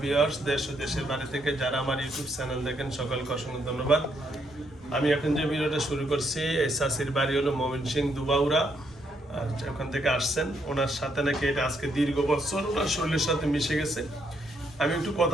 ভিউয়ার্স, দেশ ও দেশের বাইরে থেকে যারা আমার ইউটিউব চ্যানেল দেখেন সকলকে অসংখ্য ধন্যবাদ। আমি এখন যে ভিডিওটা শুরু করছি, এই চাচির বাড়ি হলো ময়মনসিংহ দুবাউরা। আর ওখান থেকে আসছেন, ওনার সাথে নাকি এটা আজকে দীর্ঘ বছর ওনার শরীরের সাথে মিশে গেছে। আমি একটু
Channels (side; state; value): both; normal; correlation 0.75